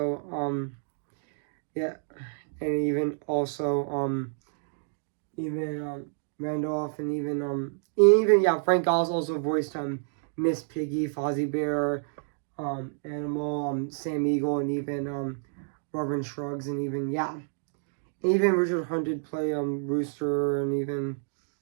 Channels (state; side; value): silent; left; digital silence